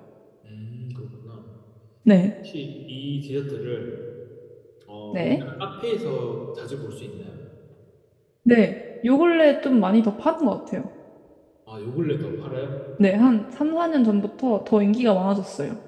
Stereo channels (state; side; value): identical; both; correlation 1.00